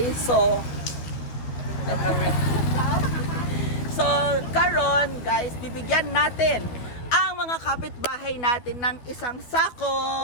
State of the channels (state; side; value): late; right; 12 ms